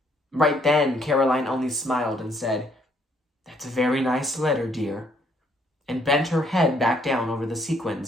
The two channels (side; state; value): both; normal; correlation 0.68